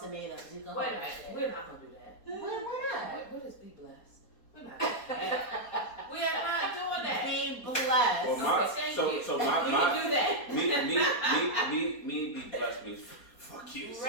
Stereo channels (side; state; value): right; late; 4.2 ms